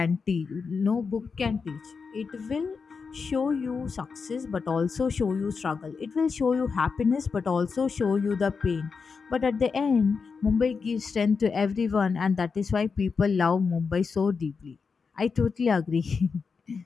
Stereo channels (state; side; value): quieter; right; 5.2 dB